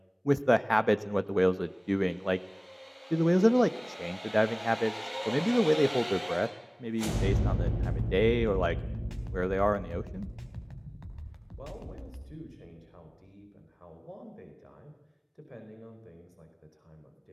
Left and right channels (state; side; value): identical; both; correlation 1.00